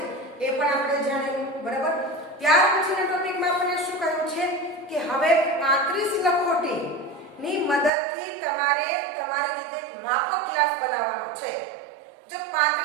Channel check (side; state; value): left; drops out; at 7.9 s